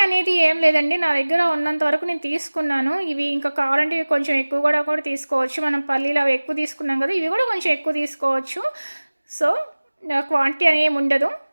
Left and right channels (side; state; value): both; inverted; correlation -1.00